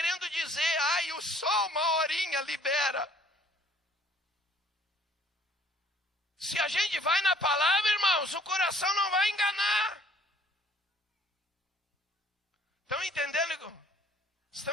dizer, ai, o sol uma horinha libera. Se a gente vai na palavra, irmãos, o coração não vai enganar. Estão entendendo?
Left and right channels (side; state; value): both; normal; correlation 0.57